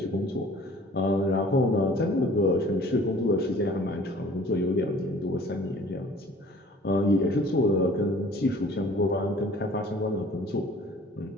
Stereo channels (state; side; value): normal; both; correlation 0.50